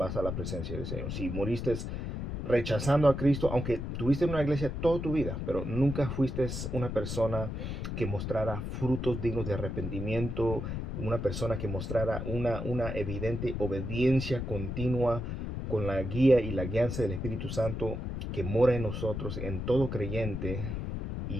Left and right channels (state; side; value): noise; left; rumble, 4 dB below the sound